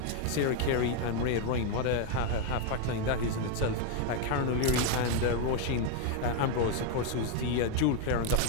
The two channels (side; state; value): both; different; correlation 0.01